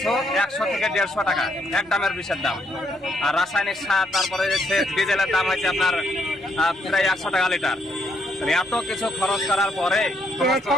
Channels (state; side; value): normal; both; correlation 0.73